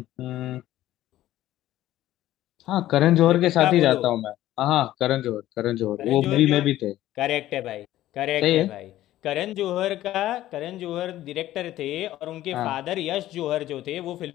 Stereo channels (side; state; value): right; quieter; 14.3 dB